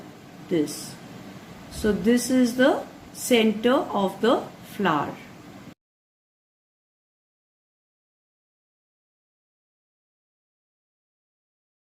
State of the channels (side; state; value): both; identical; correlation 1.00